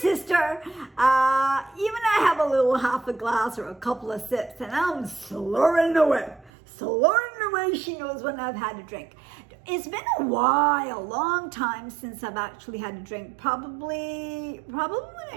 Even I have a little half a glass or a couple of sips and I'm slurring away. Slurring away, she knows when I've had a drink. It's been a while, long time since I've actually had a drink. Probably when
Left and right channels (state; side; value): drops out; left; at 6.5 s